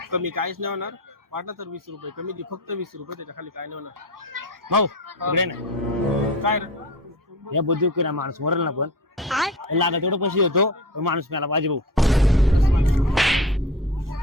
कमी काहीच नाही होणार. वाटलं तर 20 रुपये कमी दे. फक्त 20 रुपये. त्याच्या खाली काय नाही होणार. भाऊ इकडे ना काय रे या बंदूक ना माणूस मरेल ना पण लागत तेवढं पैसे होतो माणूस मला पाहिजे भाऊ.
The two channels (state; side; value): normal; both; correlation 0.32